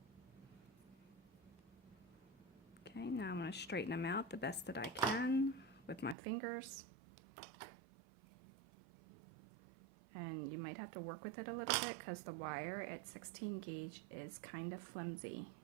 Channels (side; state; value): left; drops out; at 6.2 s